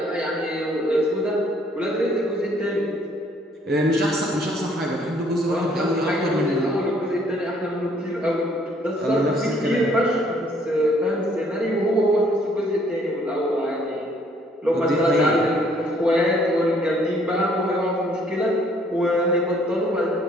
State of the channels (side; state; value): both; normal; correlation 0.63